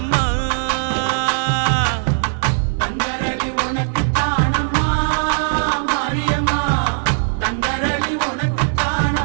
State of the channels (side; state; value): left; silent; 67 dB below the other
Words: தங்கரளி உனக்கு தானம்மா மாரியம்மா தங்கரளி உனக்கு